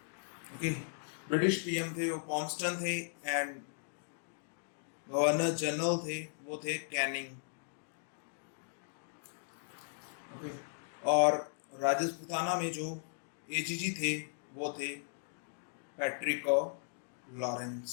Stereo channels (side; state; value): right; silent; digital silence